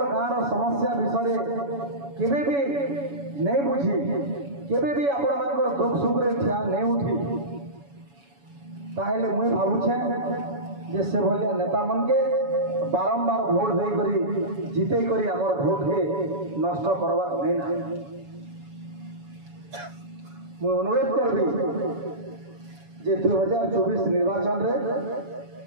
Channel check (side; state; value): left; late; 7.1 ms